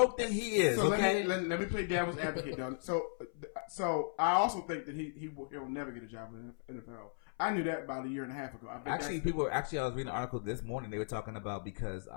than he is. So okay, let me play devil's advocate though. So I also think that he'll never get a job in the NFL. I knew that about a year and a half ago. I was reading an article this morning. They were talking about because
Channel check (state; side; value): silent; right; 54 dB below the other